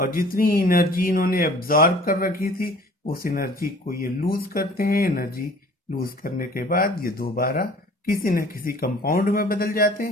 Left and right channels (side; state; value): both; normal; correlation 0.50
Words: जितनी एनर्जी इन्होंने एब्जॉर्ब कर रखी थी उस एनर्जी को ये लूज करते हैं। एनर्जी लूज करने के बाद ये दोबारा किसी न किसी कंपाउंड में बदल जाते